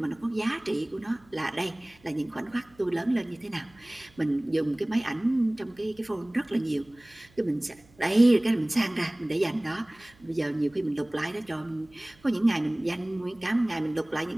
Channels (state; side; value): noise; right; hum, 29 dB below the sound